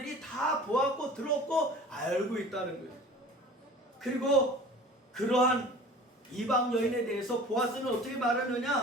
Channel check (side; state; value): both; normal; correlation 0.43